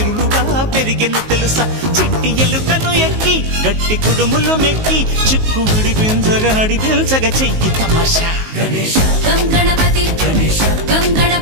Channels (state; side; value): late; left; 19 ms